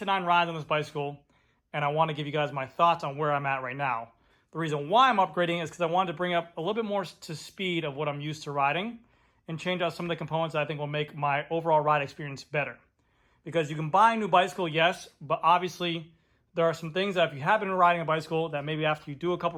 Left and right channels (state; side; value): identical; both; correlation 1.00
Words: 9 rides on this bicycle, and I want to give you guys my thoughts on where I'm at right now. The reason why I'm upgrading is because I wanted to bring up a little bit more to speed of what I'm used to riding and change out some of the components that I think will make my overall ride experience better. Because you can buy a new bicycle, yes, but obviously there are some things that if you have been riding a bicycle that maybe after you do a couple